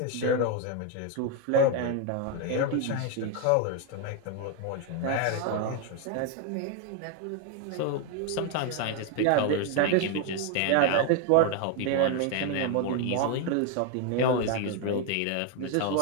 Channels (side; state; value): both; different; correlation 0.01